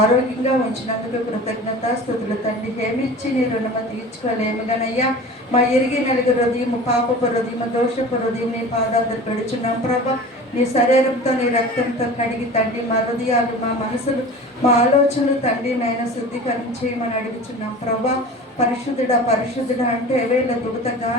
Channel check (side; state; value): both; normal; correlation 0.37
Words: ఉంచినందుకు కృతజ్ఞత స్తుతులు తండ్రి ఏమిచ్చి నీ రుణమ తీర్చుకోలేము గనయ్యా. మా ఎరిగి నలుగు హృదయం పాపపు హృదయం దోషపు హృదయం నీ పాదాలు పెడుచున్నాం ప్రభా. నీ శరీరంతో నీ రక్తంతో కడిగి తండ్రి మా హృదయాలు మా మనసులు మా ఆలోచనలు తండ్రి నైనా శుద్ధీకరించి మనం అడుగుచున్నాం ప్రభా. పరిశుద్ధుడా పరిశుద్ధుడా అంటే వేళ దుగుత